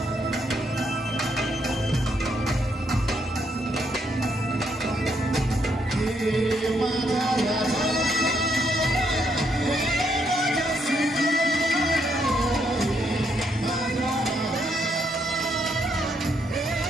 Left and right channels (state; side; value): normal; both; correlation 0.75